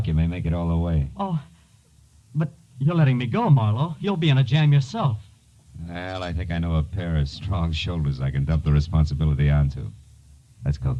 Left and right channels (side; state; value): both; identical; correlation 1.00